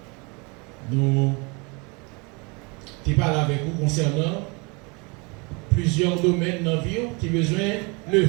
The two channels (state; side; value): quieter; left; 29.9 dB